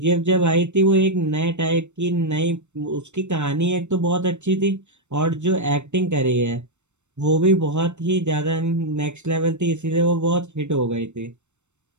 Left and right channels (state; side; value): late; left; 0.83 ms